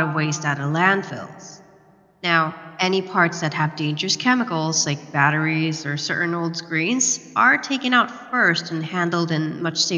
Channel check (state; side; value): identical; both; correlation 1.00